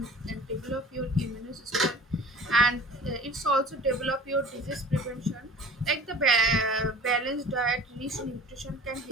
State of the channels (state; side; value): normal; both; correlation 0.43